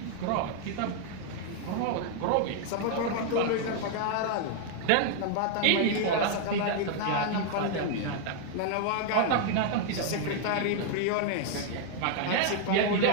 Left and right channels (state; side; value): different; both; correlation 0.00